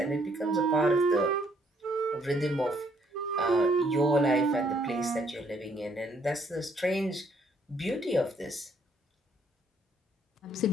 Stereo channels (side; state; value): both; normal; correlation 0.67